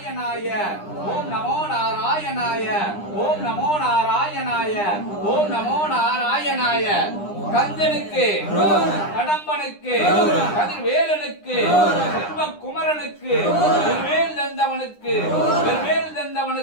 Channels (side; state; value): right; late; 9.9 ms